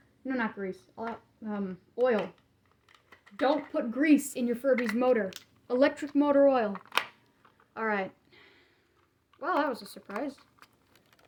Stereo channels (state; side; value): identical; both; correlation 1.00